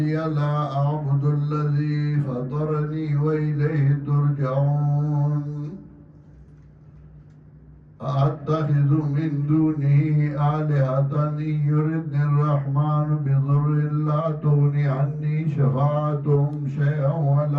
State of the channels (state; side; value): identical; both; correlation 1.00